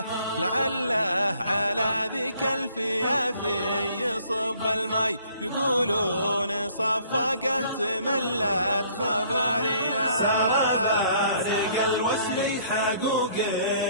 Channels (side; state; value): both; inverted; correlation -0.60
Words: لعله على ذيك الفيافي يصب المي، يقولون صفقه تملت خباريه. سرى الوسل حقوق